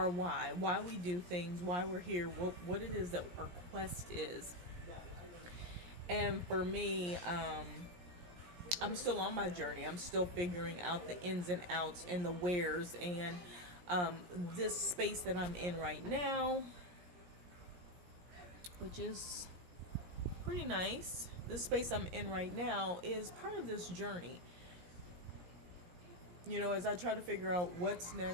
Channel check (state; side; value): late; left; 17 ms